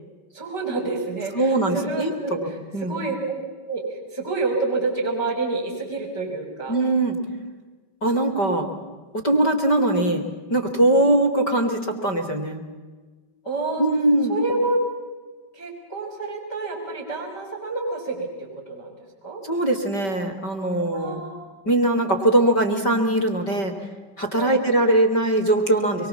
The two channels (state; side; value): late; right; 5.2 ms